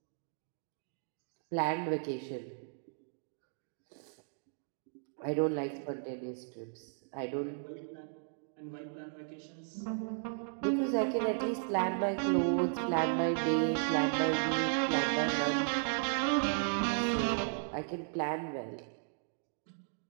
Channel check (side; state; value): left; silent; digital silence